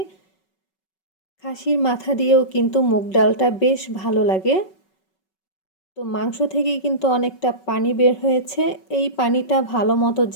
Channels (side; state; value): right; late; 5.3 ms